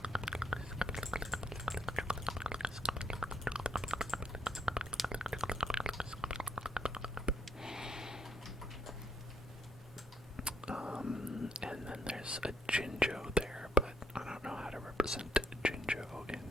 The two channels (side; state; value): both; normal; correlation 0.74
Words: And then there's a Jinjo there, but I don't know how to represent Jinjo in